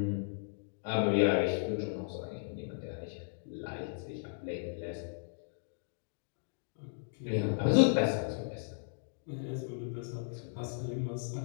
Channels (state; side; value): silent; right; digital silence